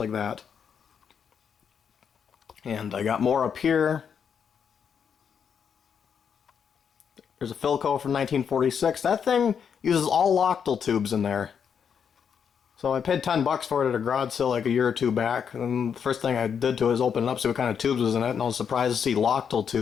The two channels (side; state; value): right; quieter; 7.3 dB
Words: that. And I got more up here. There's a Philco from 1946. That thing uses all Lochtel tubes in there. So I paid $10 for it at a garage sale like a year or two back. And the first thing I did to it is open it up, see what kind of tubes was in it, and I was surprised to see Lochtel